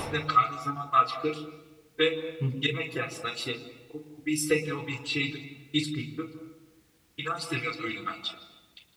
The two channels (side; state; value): both; identical; correlation 1.00